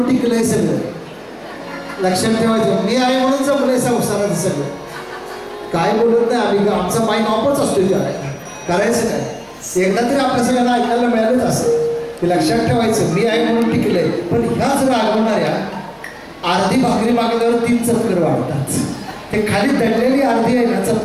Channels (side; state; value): both; identical; correlation 1.00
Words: टिकलंय सगळं. लक्षात ठेवायचं, मी आहे म्हणून जमलंय संसाराचं सगळं. काय बोलत नाही आम्ही, आमचा माईक ऑफच असतो. करायचं काय, एकदा तरी आपल्या सगळ्यांना ऐकायला मिळालंच असं की लक्षात ठेवायचं, मी आहे म्हणून टिकलंय. पण ह्याच रागवणाऱ्या अर्धी भाकरी मागल्यावर 3 चक्कर वाढतात. ते खाली दडलेली अर्धी आहे ना,